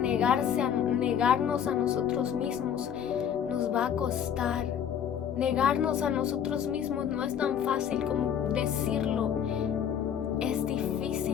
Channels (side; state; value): right; quieter; 8.7 dB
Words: a nosotros mismos nos va a costar. Negarnos a nosotros mismos no es tan fácil como decirlo. Es